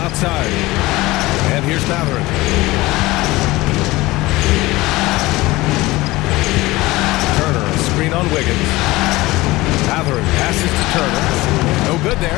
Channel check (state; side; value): quieter; right; 19.8 dB